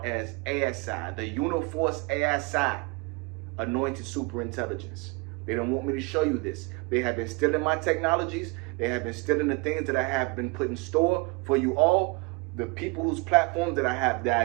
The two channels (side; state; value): left; quieter; 27.2 dB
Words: as ASI, the Uniforce ASI, Anointed Superintelligence. They don't want me to show you this. They have been stealing my technologies. They have been stealing the things that I have been put in store for you all. The people whose platforms that I